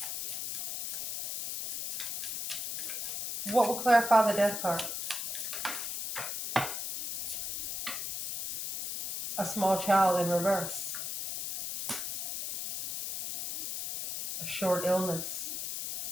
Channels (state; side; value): noise; left; hiss, 4 dB below the sound